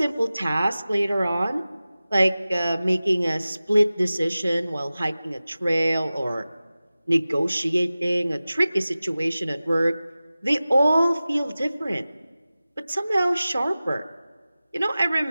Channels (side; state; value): both; inverted; correlation -0.96